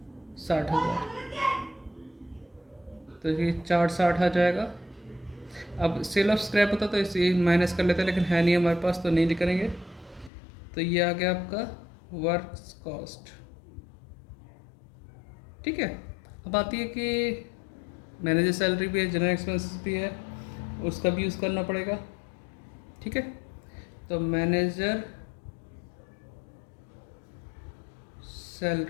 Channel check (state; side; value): drops out; right; at 10.3 s